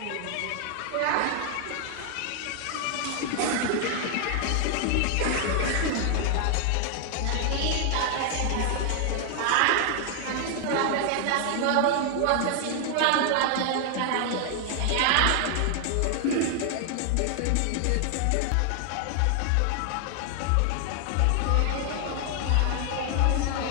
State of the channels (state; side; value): different; both; correlation 0.00